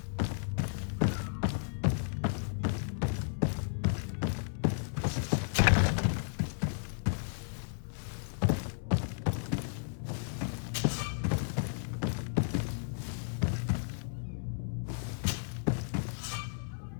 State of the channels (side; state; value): right; silent; digital silence